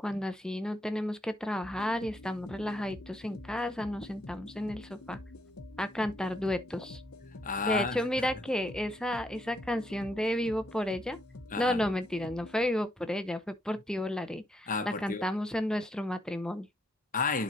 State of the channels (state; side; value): normal; both; correlation 0.74